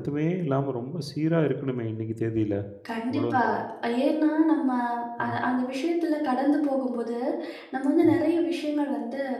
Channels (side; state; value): both; identical; correlation 1.00